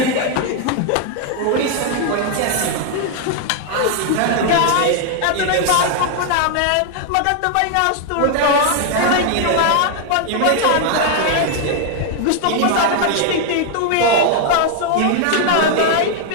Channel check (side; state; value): both; different; correlation 0.00